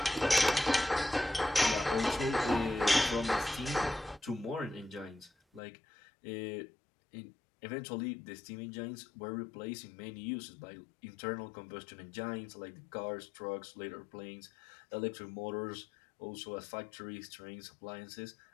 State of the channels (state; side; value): drops out; right; at 5.6 s